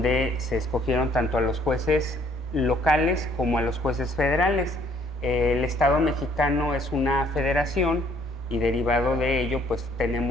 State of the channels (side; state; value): left; noise; hum, 27 dB below the sound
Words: se escogieron tanto a los jueces locales como a los jueces federales. El Estado mexicano es una federación y derivado de ello, pues